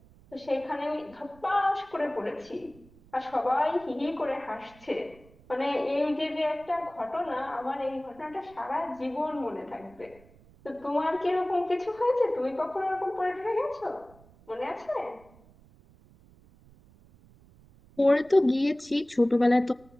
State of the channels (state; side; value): noise; right; rumble, 26 dB below the sound